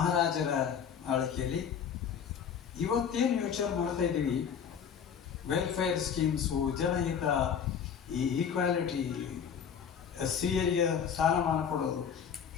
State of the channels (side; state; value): right; quieter; 7.6 dB